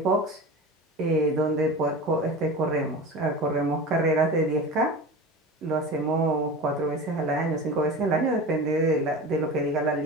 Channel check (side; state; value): both; normal; correlation 0.32